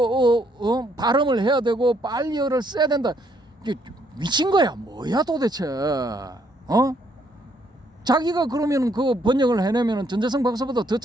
발음을 해야 되고 빨리어를 써야 된다. 이게 미친 거야. 뭐야 도대체? 자기가 그러면 그 번역을 해내면 전재성 박사보다 더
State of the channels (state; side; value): normal; both; correlation 0.70